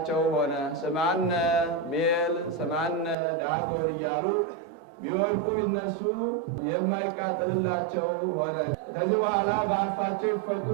ሆነ። ስማነ ቤል ስማነ ዳጎን እያሉ ቢወድቁ ቢነሱ የማይቃጠልላቸው ሆነ። ከዚህ በኋላ በአፋቸው ይፈቁ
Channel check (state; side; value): drops out; left; at 3.2 s